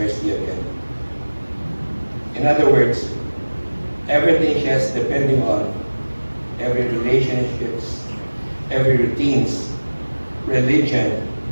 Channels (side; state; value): both; inverted; correlation -1.00